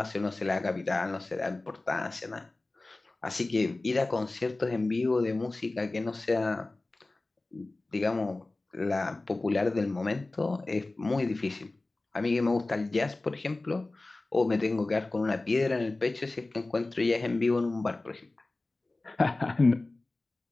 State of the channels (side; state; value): right; quieter; 3.1 dB